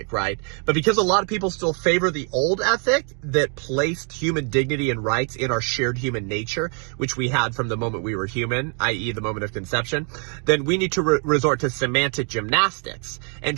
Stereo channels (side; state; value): left; quieter; 38.9 dB